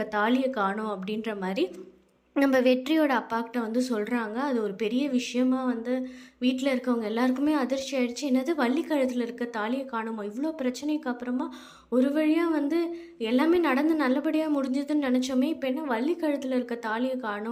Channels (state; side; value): identical; both; correlation 1.00